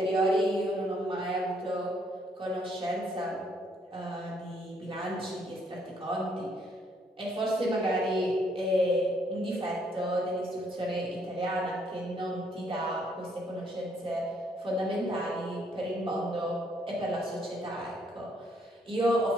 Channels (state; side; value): normal; both; correlation 0.69